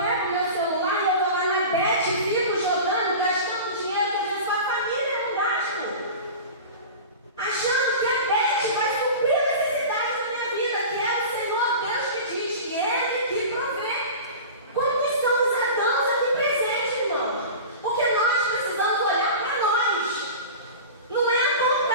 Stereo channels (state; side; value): inverted; both; correlation -0.33